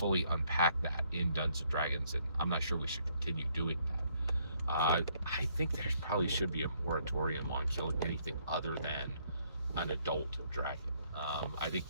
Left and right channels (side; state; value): both; inverted; correlation -0.68